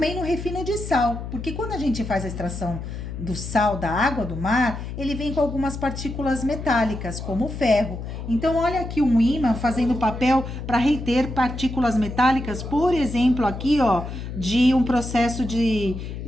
no refino de sal, porque quando a gente faz a extração do sal da água do mar, ele vem com algumas partículas metálicas, como o ferro. Então, olha aqui um ímã fazendo papel para reter partículas metálicas, por exemplo, aqui, ó, de um processo de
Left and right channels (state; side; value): noise; left; hum, 8 dB below the sound